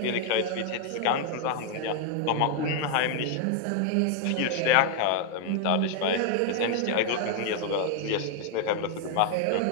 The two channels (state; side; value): different; both; correlation 0.00